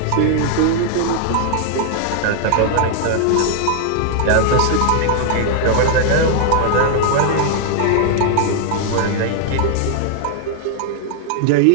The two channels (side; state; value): both; different; correlation 0.00